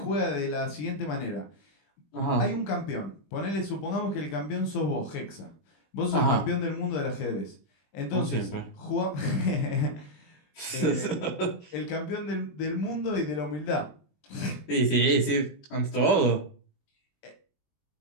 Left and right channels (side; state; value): right; late; 20 ms